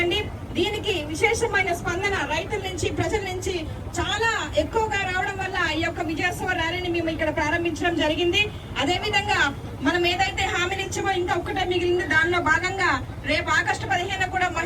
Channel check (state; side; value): identical; both; correlation 1.00